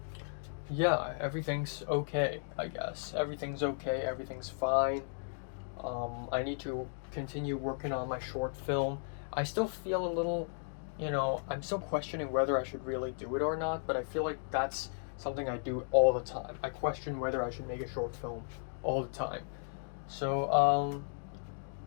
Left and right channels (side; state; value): right; silent; digital silence